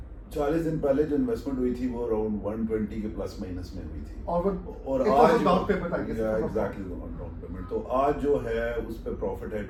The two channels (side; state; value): both; identical; correlation 1.00